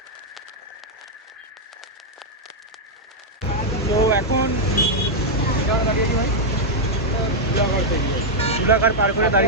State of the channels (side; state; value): both; normal; correlation -0.03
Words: তো এখন দাঁড়িয়ে আছি ভাই, জুলাঘাট পার করে